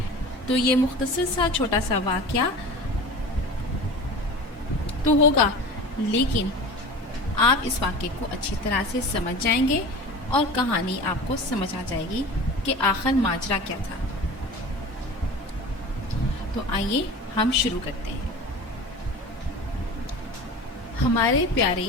تو یہ مختصر سا چھوٹا سا واقعہ تو ہوگا، لیکن آپ اس واقعے کو اچھی طرح سے سمجھ جائیں گے اور کہانی آپ کو سمجھ آ جائے گی کہ آخر ماجرا کیا تھا۔ تو آئیے ہم شروع کرتے ہیں۔ ہمارے پیارے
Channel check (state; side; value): normal; both; correlation 0.35